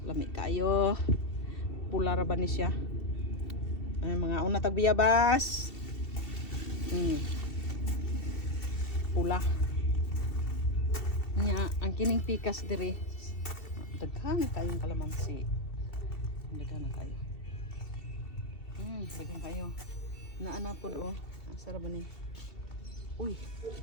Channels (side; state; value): right; late; 2.7 ms